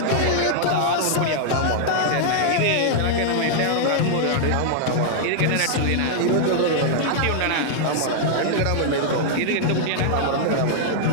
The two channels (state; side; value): different; both; correlation -0.01